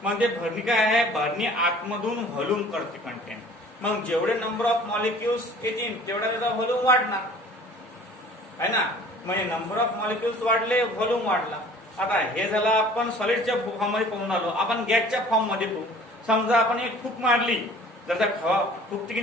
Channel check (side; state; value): both; normal; correlation 0.49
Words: मग ते भरणी काय आहे? भरणी आतमधून व्हॉल्यूम करते कंटेंट. मग जेवढे नंबर ऑफ मॉलिक्युल्स येतील तेवढा त्याचा व्हॉल्यूम वाढणार आहे ना. म्हणजे नंबर ऑफ मॉलिक्युल्स वाढले, व्हॉल्यूम वाढला. आता हे झालं आपण सॉलिडच्या फॉर्म मध्ये पाहून आलो. आपण गॅसच्या फॉर्म मध्ये पाहू. समजा आपण एक फूक मारली, जर फुकते की